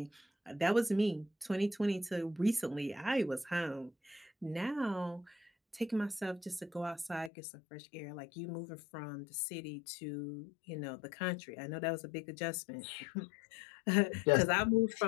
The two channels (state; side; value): drops out; right; at 7.3 s